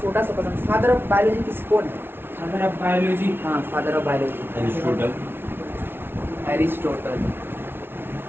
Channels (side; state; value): left; late; 0.11 ms